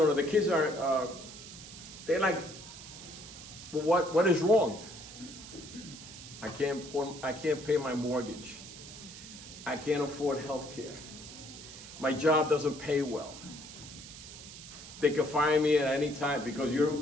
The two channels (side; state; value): right; noise; hiss, 14 dB below the sound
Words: kids are, they're like, well, what is wrong? I can't pay my mortgage. I can't afford health care. My job doesn't pay well. They can fire me at any time because